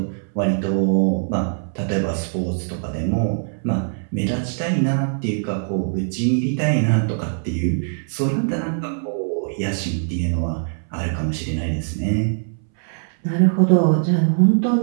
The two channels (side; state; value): left; silent; 64 dB below the other